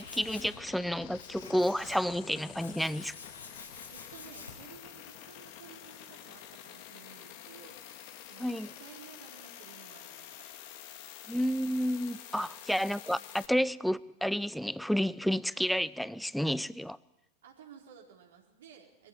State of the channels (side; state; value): both; normal; correlation 0.95